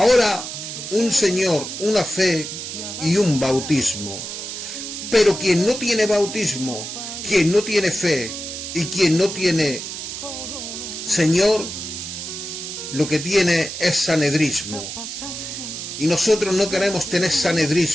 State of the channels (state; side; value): noise; right; hiss, 7 dB below the sound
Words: un Señor, una fe y un bautismo. Pero quien no tiene bautismo, quien no tiene fe y quien no tiene Señor, lo que tiene es sanedrismo. Y nosotros no queremos tener